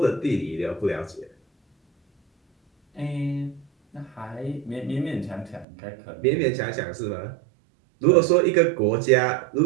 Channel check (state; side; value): drops out; left; at 5.7 s